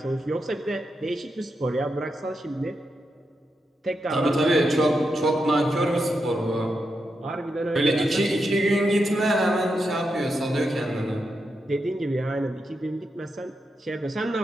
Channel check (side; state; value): both; normal; correlation 0.85